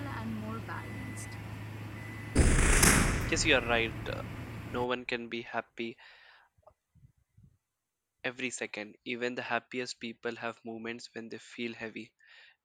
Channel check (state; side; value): identical; both; correlation 1.00